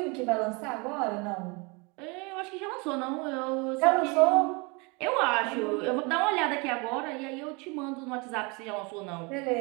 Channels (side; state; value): left; quieter; 29.3 dB